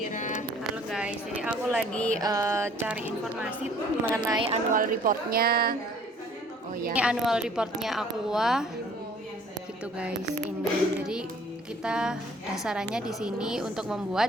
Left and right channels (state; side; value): normal; both; correlation 0.56